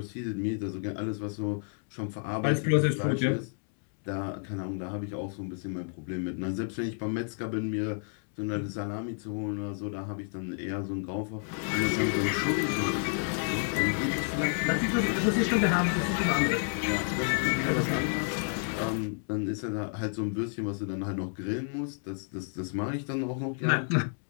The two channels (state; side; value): silent; right; 57 dB below the other